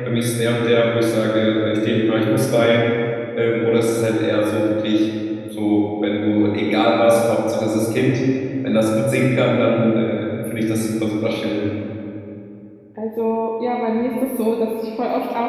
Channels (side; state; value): both; identical; correlation 1.00